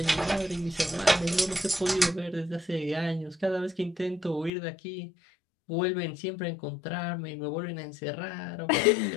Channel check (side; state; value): right; drops out; at 4.5 s